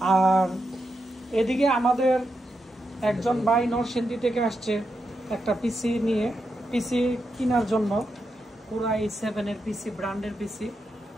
আর এদিকে আমাদের একজন ভাই নরসিংদী থেকে আসছে একটা পিসি নিয়ে, পিসি কেনার জন্য, পুরা i7-এর পিসি, ব্র্যান্ডের পিসি।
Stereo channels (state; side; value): normal; both; correlation 0.85